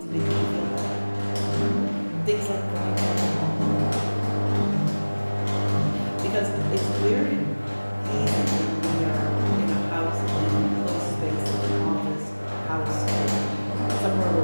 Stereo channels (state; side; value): inverted; both; correlation -1.00